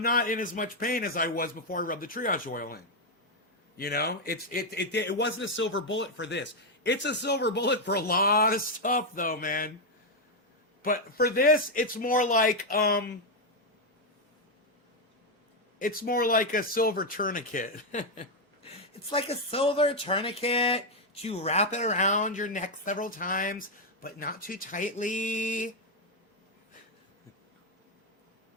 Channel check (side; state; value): both; normal; correlation 0.02